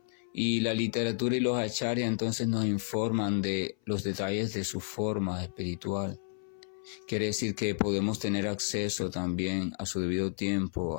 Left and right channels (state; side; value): silent; right; 57 dB below the other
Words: Y la literatura y los acharyas entonces nos informan de los detalles de su forma espiritual. Quiere decir que podemos tener acceso también a su debido tiempo